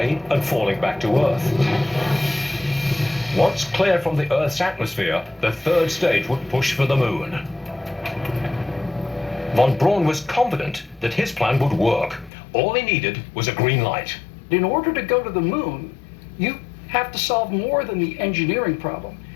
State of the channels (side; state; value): right; drops out; at 12.3 s